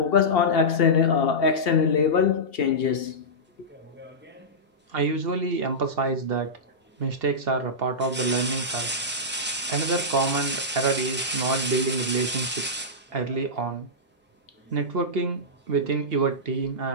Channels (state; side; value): normal; both; correlation -0.13